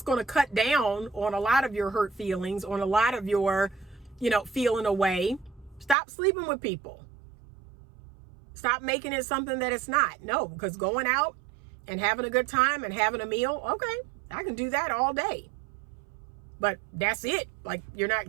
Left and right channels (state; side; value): drops out; left; at 6.0 s